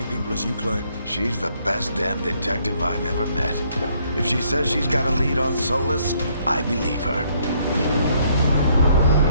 people as you claim. She's the best damn detective I've ever met. If she says she's got a lead on Solus, I believe her.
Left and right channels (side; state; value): both; inverted; correlation -0.68